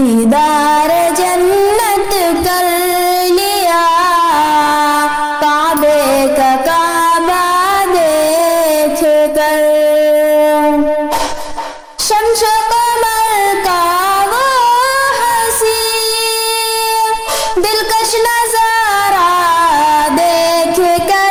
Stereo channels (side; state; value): both; identical; correlation 1.00